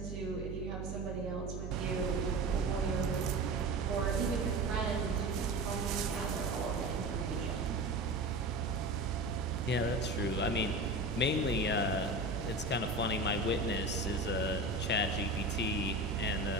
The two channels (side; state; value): right; noise; hum, 6 dB below the sound